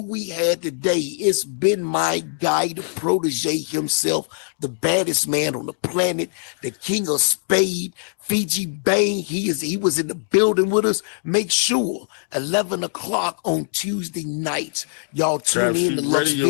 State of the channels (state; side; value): silent; right; digital silence